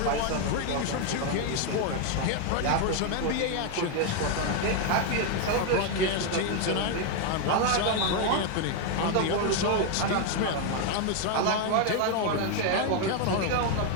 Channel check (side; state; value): both; different; correlation 0.01